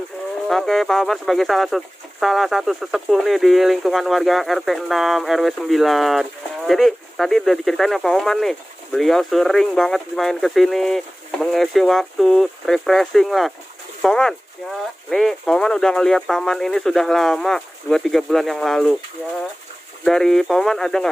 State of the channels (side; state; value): both; normal; correlation 0.98